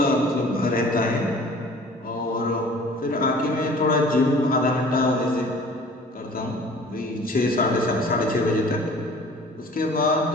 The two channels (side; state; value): both; normal; correlation 0.48